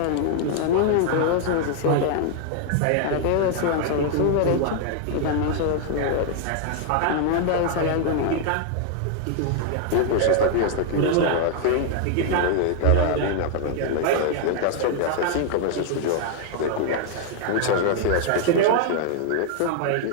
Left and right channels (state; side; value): different; both; correlation 0.00